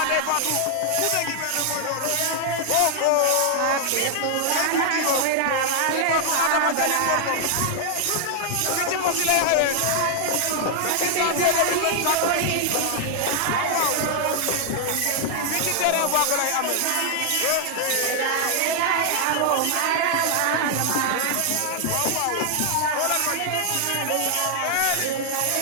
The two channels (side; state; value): both; different; correlation 0.00